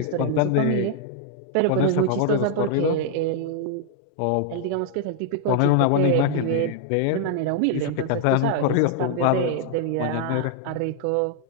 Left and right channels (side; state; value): both; different; correlation 0.00